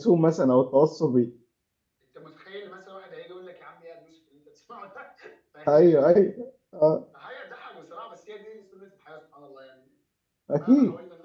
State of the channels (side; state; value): both; identical; correlation 1.00